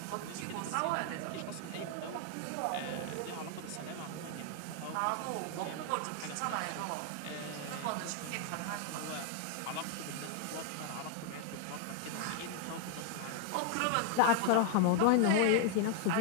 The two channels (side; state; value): both; different; correlation 0.00